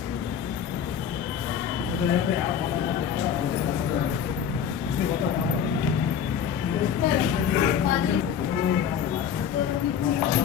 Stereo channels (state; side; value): quieter; right; 7.9 dB